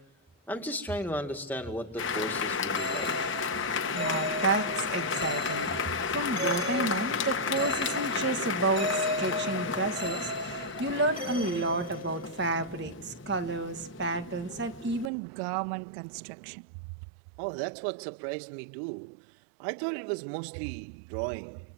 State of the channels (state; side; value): drops out; left; at 15.1 s